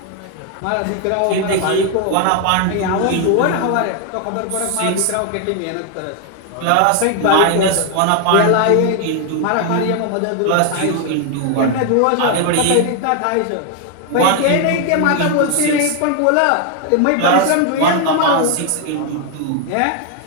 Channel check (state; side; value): different; both; correlation 0.01